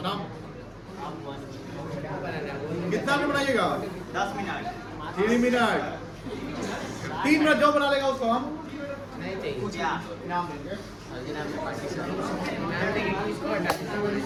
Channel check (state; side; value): identical; both; correlation 1.00